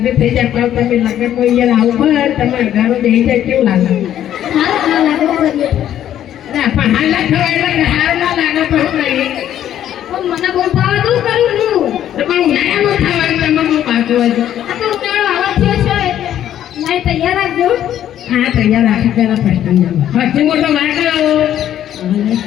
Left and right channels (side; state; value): right; quieter; 11.1 dB